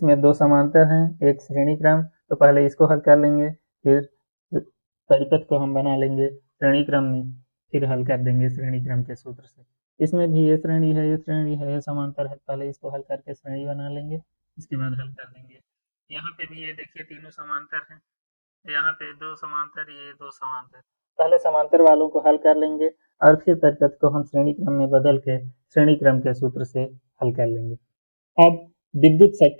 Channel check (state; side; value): inverted; both; correlation -1.00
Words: 2 समांतर हैं, एक श्रेणी क्रम, तो पहले इसको हल कर लेंगे, फिर परिपथ को हम बना लेंगे श्रेणी क्रम में, फिर हल कर देंगे श्रेणी क्रम के सूत्र से। इसमें भी ये श्रेणी है, ये श्रेणी है, ये समांतर है, पहले इसको हल करके श्रेणी बना लेंगे, इसके बाद हल कर देंगे। यहाँ पे भी ये देखिए तीनों समांतर हैं, यहाँ पे दो समांतर, ये दो समांतर, पहले समांतर वालों को हल कर लेंगे और फिर परिपथ को हम श्रेणी क्रम में बदल के श्रेणी क्रम के सूत्र से हल कर लेंगे। अब विद्युत